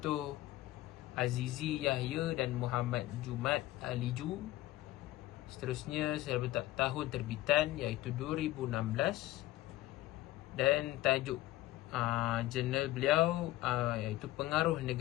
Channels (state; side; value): quieter; right; 16.4 dB